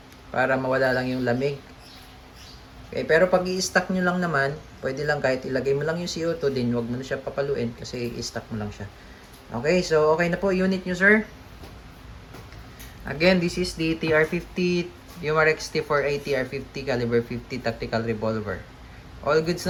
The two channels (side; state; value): both; identical; correlation 1.00